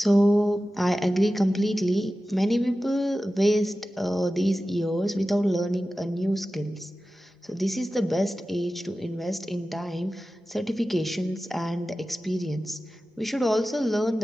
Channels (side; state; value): both; normal; correlation 0.95